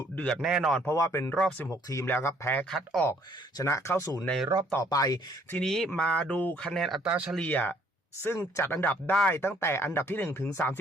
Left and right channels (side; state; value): both; normal; correlation 0.63